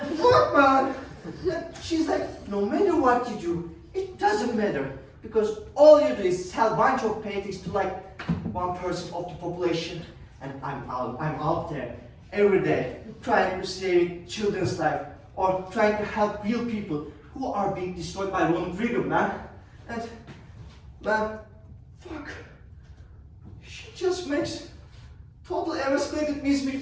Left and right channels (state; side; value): identical; both; correlation 1.00